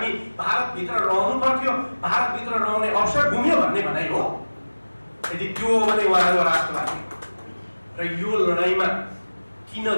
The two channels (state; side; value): inverted; both; correlation -1.00